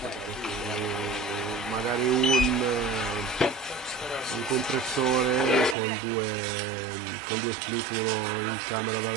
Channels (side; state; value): left; drops out; at 5.8 s